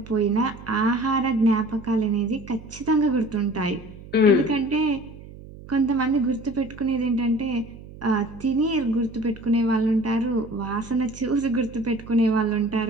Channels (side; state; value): right; noise; hum, 17 dB below the sound